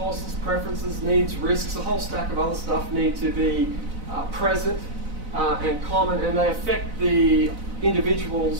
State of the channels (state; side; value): late; left; 4.0 ms